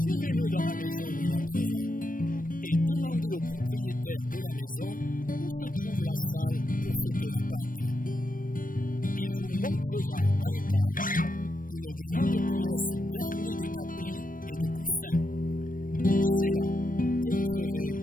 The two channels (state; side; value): late; right; 0.40 ms